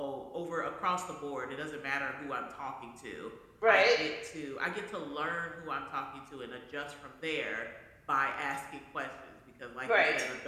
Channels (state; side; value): identical; both; correlation 1.00